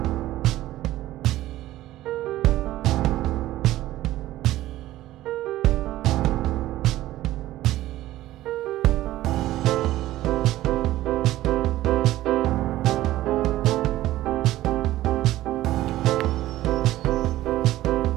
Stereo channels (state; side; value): quieter; left; 15.3 dB